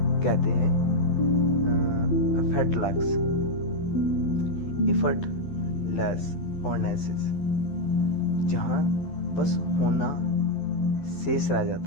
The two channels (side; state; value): right; late; 12 ms